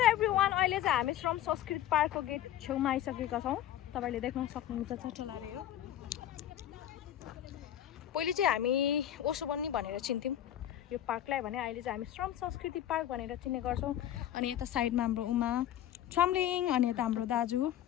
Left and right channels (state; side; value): quieter; right; 11.8 dB